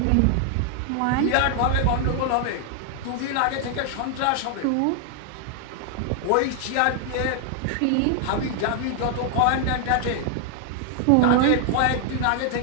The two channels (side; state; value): both; different; correlation 0.00